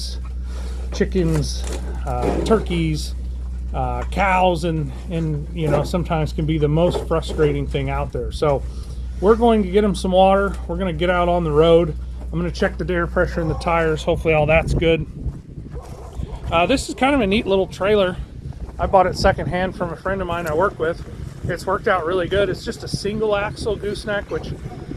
chickens, turkeys, cows, and you know, sometimes can be the most frustrating thing out there. So we're going to get them some water. We're going to get out on the road. I'm going to check the air pressure in the tires. Hopefully all that's good. This is kind of a neat little trailer. I bought it secondhand from a friend of mine I work with. It's worked out really good. It's just a single axle gooseneck, which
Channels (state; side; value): identical; both; correlation 1.00